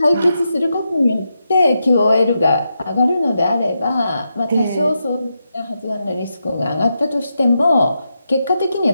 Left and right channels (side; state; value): both; inverted; correlation -0.85